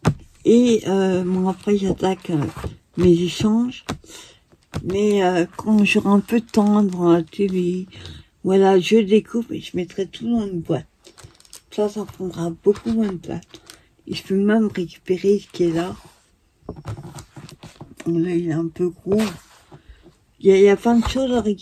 Et bon, après, j'attaque mes échanges. Mais quand j'aurai un peu de temps devant la télé, voilà, je découpe et je mettrai tout dans une boîte. Ça prendra beaucoup moins de place. Et je peux même récupérer ce qui est là. Là, il est un peu gros. Il y a plein de choses à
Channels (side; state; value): both; identical; correlation 1.00